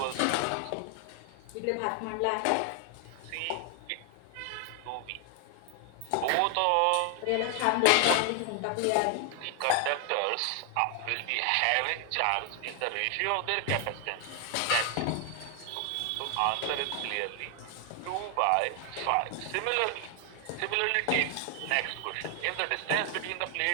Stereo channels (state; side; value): different; both; correlation 0.00